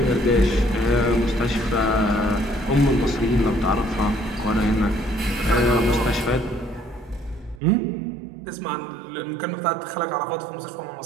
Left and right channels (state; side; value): drops out; left; at 7.6 s